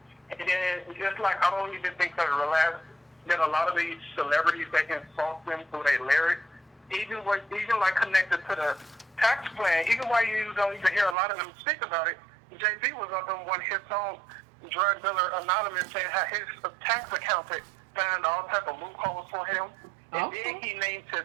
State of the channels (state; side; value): drops out; left; at 11.2 s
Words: And then just like I don't even think that a lot of these celebrities, they insult them through their lyrics. Even like connected to the tax plan, even while you don't even hear a lot of them speak about it, JB was up on his own drug dealer anonymous saying how his tax accountant found all type of loopholes for him. And then he named